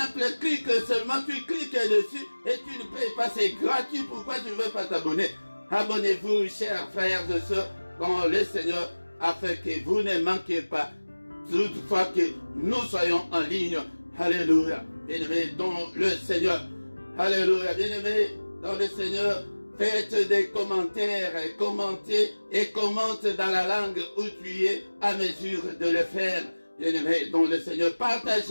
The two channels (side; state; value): both; inverted; correlation -1.00